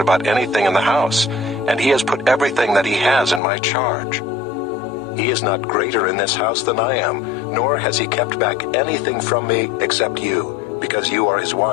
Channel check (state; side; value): drops out; right; at 3.4 s